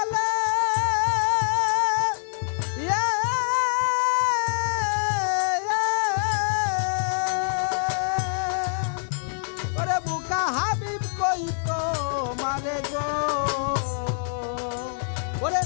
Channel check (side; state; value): right; silent; digital silence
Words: ওরে বুকা হাবিব কই তো মারে গো। ওরে